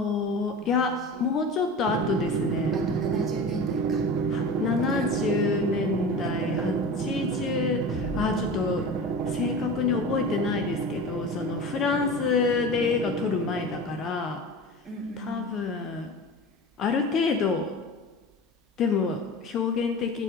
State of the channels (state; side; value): normal; both; correlation 0.32